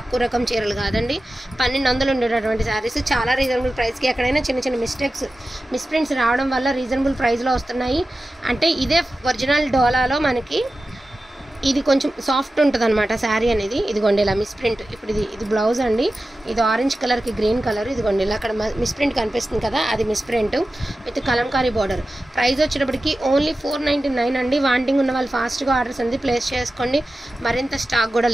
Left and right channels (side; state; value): both; normal; correlation 0.94